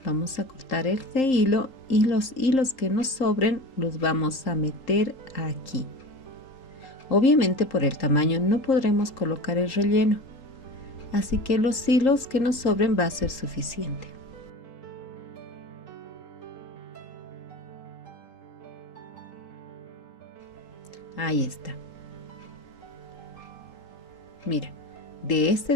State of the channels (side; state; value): right; late; 3.8 ms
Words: Vamos a cortar este hilo y los hilos que nos sobren los vamos a meter aquí. Obviamente por el tamaño no podremos colocar el relleno, así que los hilos que nos sobren va a ser suficiente. Ahí está. Mira, de este